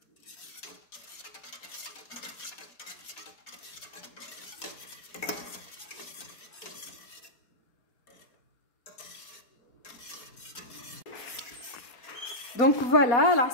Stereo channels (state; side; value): late; right; 4.2 ms